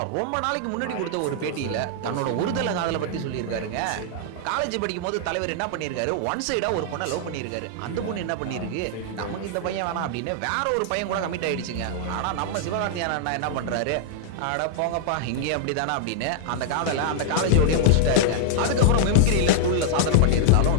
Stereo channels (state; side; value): different; both; correlation -0.01